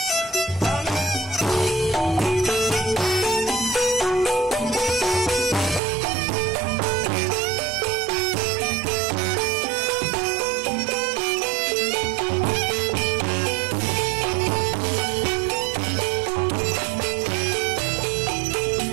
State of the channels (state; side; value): drops out; left; at 5.8 s